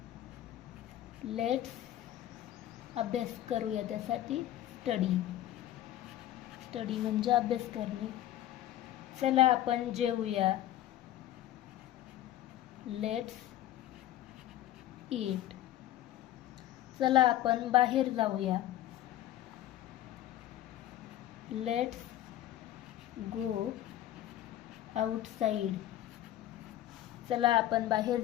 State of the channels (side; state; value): right; quieter; 13.2 dB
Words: लेट्स अभ्यास करूया त्यासाठी स्टडी म्हणजे अभ्यास करणे. चला आपण जेवूया. Let's eat. चला आपण बाहेर जाऊया. Let's go outside. चला आपण बाहेर